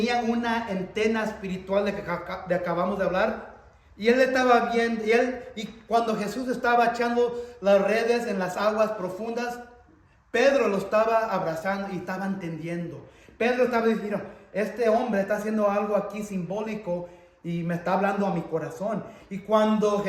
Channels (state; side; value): identical; both; correlation 1.00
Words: una antena espiritual de que acabamos de hablar. Y él estaba viendo, y cuando Jesús estaba echando las redes en las aguas profundas, Pedro lo estaba abrazando y estaba entendiendo. Pedro estaba diciendo, este hombre está haciendo algo aquí simbólico y me está hablando a mi corazón. Y cuando